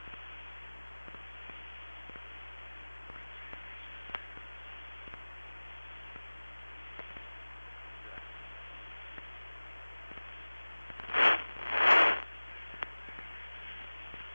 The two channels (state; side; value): inverted; both; correlation -1.00